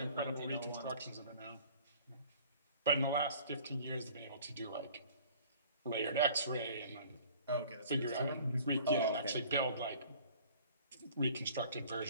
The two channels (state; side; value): inverted; both; correlation -0.50